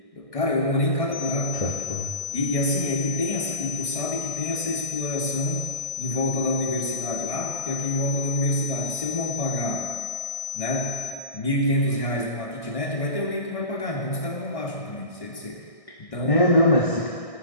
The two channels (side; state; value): right; late; 1.6 ms